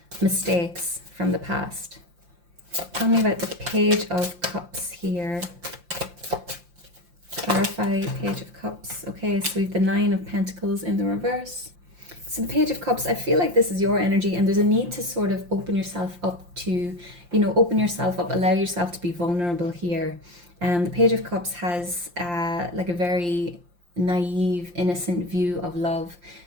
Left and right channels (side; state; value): left; late; 5.7 ms